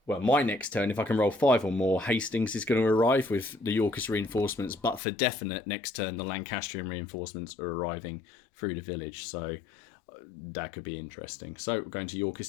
Well, my next turn, if I can roll 5 or more, Hastings is going to arrive with the Yorkist reinforcements, but for definite, next turn, the Lancastrian reinforcements are arriving through the village, so that could be interesting. So we're going to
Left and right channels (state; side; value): drops out; right; at 5.0 s